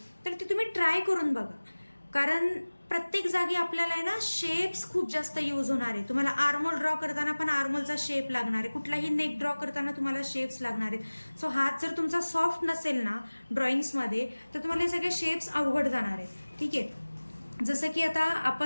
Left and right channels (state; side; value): inverted; both; correlation -1.00